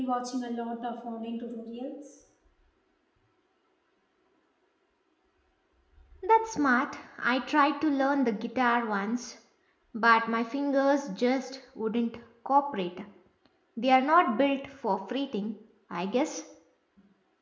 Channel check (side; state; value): both; identical; correlation 1.00